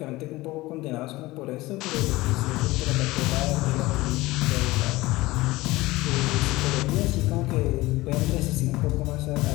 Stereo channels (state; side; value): quieter; right; 19.6 dB